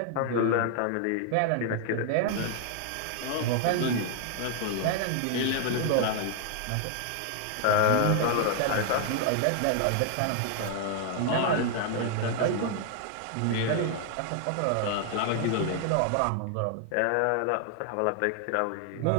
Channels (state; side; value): different; both; correlation 0.00